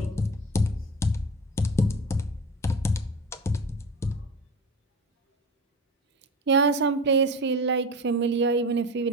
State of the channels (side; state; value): both; normal; correlation 0.31